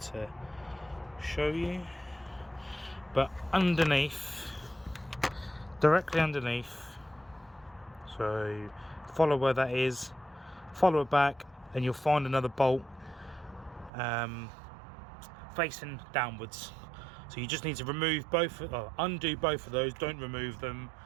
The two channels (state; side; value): drops out; left; at 13.9 s